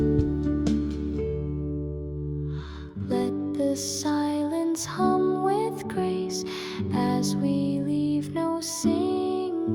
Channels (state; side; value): identical; both; correlation 1.00